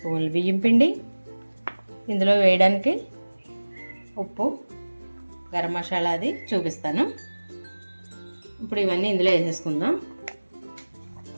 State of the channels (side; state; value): both; inverted; correlation -1.00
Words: బియ్యం పిండి, ఇందులో వేయడానికి ఉప్పు, గరం మసాలా అది చూపిస్తాను. ఇప్పుడు ఇవన్నీ ఇందులో వేసేసుకుందాం.